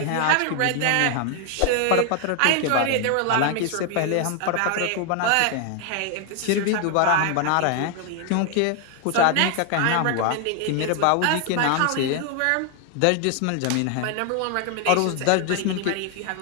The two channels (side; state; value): both; different; correlation 0.00